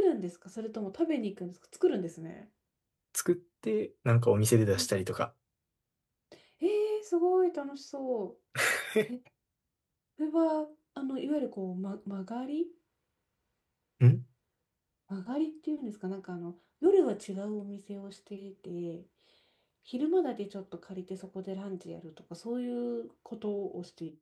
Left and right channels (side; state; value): both; identical; correlation 1.00